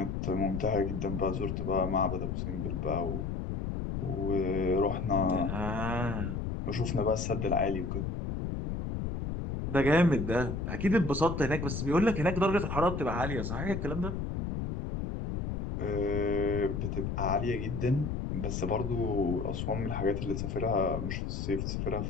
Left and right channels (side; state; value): left; noise; rumble, 3 dB below the sound